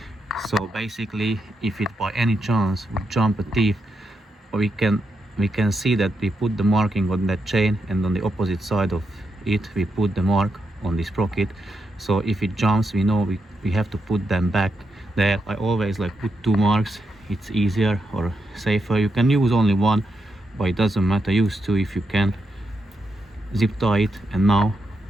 So basically, if it by any chance would jump a teeth, we can see that we put the marking on that chain, and on the opposite side of it we put the mark on the sprocket. So if it jumps, we know we have to put them back there. I always like put 2 marks, it's easier or safer. You can use only 1, but it doesn't matter, use 2 if you can. Zip tie it, and now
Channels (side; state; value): both; normal; correlation 0.83